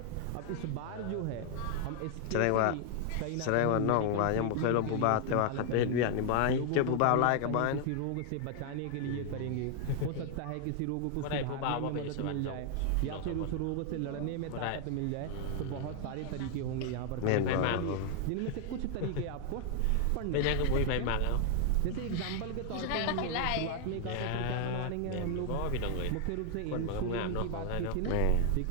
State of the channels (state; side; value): different; both; correlation 0.00